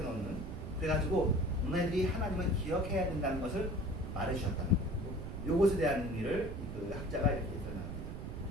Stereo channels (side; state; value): right; noise; rumble, 7 dB below the sound